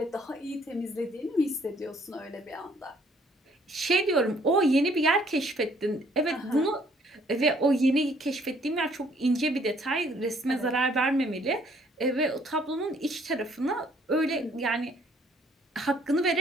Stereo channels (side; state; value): both; normal; correlation 0.62